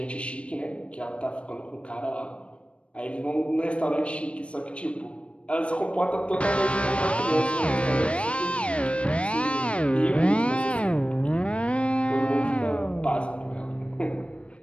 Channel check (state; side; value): late; right; 0.060 ms